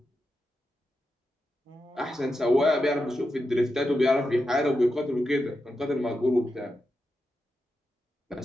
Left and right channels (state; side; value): normal; both; correlation 0.88